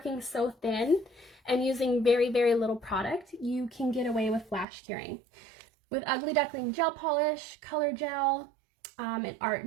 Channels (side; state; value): left; drops out; at 4.7 s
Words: so thin and using very, very little product. You can get away with flash curing. With Ugly Duckling gel polish, color gel, and art